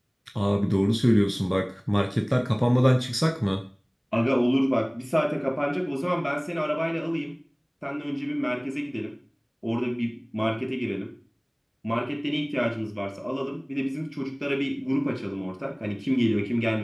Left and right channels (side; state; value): both; identical; correlation 1.00